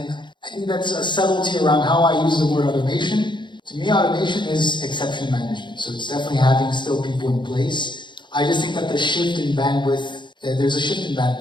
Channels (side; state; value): right; late; 0.23 ms